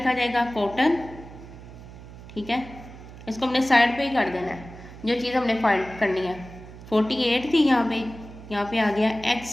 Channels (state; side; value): noise; right; hum, 16 dB below the sound